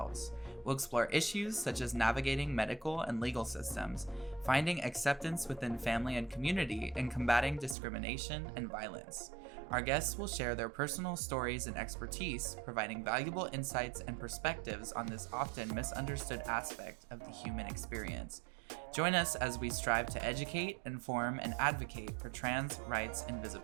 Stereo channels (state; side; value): drops out; left; at 7.8 s